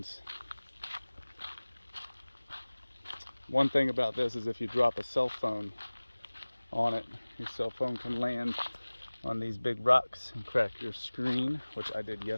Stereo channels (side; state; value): both; inverted; correlation -1.00